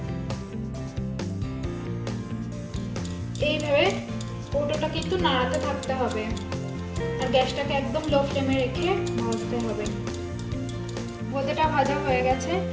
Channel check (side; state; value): both; identical; correlation 1.00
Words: এইভাবে কৌটোটা কিন্তু নাড়াতে থাকতে হবে আর গ্যাসটাকে একদম লো ফ্লেমে রেখে ভাজতে হবে। বোঁদেটা ভাজা হয়ে গেছে।